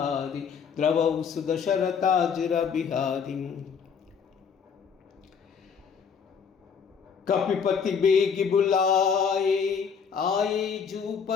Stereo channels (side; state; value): right; quieter; 6.5 dB